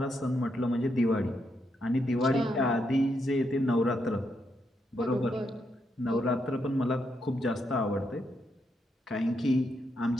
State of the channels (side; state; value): both; normal; correlation 0.80